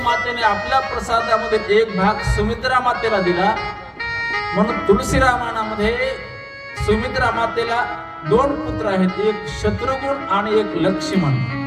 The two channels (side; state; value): both; identical; correlation 1.00